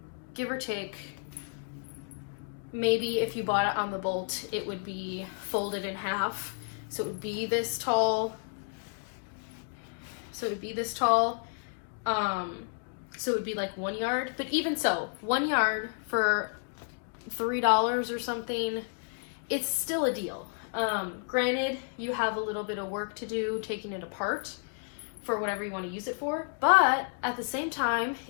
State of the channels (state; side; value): silent; right; 57 dB below the other